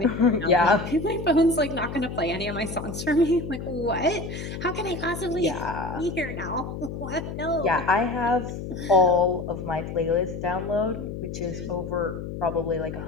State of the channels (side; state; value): left; noise; hum, 7 dB below the sound